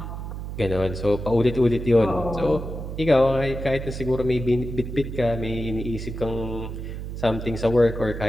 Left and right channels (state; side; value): noise; right; hum, 7 dB below the sound